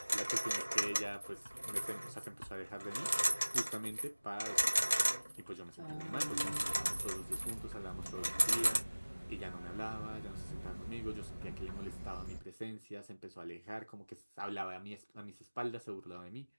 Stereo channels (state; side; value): inverted; both; correlation -1.00